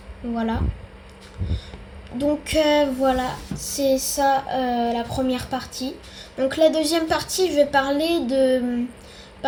Voilà. Donc voilà, c'est ça la première partie. Donc la deuxième partie, je vais parler de,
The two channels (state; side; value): identical; both; correlation 1.00